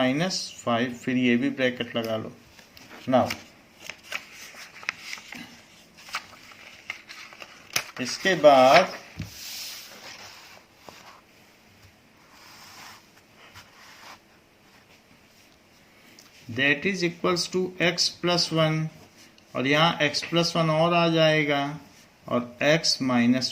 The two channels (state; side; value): identical; both; correlation 1.00